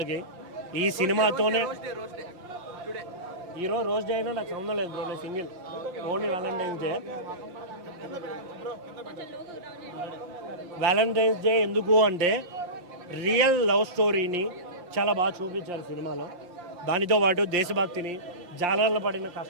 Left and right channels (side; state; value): left; late; 5.7 ms